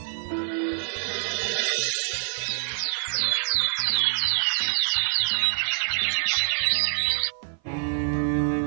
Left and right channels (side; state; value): left; silent; 55 dB below the other